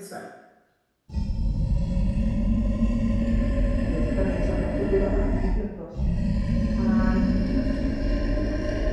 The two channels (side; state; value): both; identical; correlation 1.00